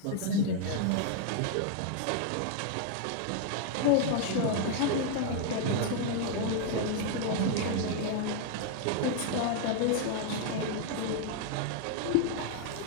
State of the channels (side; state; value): both; different; correlation 0.00